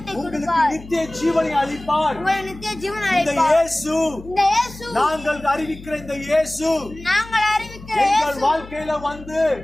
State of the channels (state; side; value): noise; left; hum, 17 dB below the sound